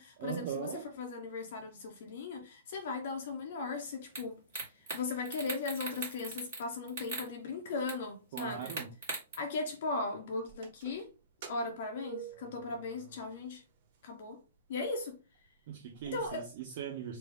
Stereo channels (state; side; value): inverted; both; correlation -0.41